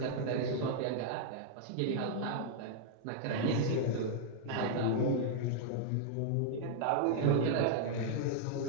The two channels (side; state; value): both; different; correlation -0.01